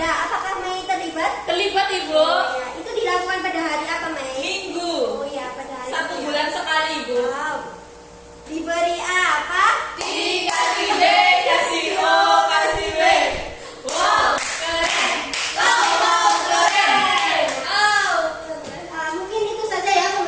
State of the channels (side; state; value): both; identical; correlation 1.00